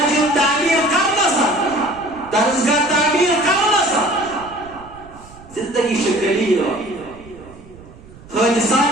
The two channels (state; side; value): noise; right; rumble, 21 dB below the sound